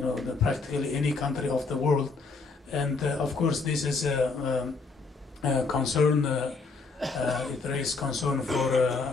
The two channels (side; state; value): right; quieter; 4.2 dB